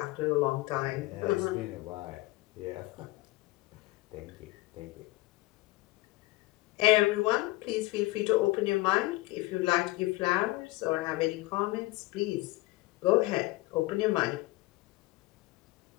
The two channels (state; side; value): quieter; right; 20.7 dB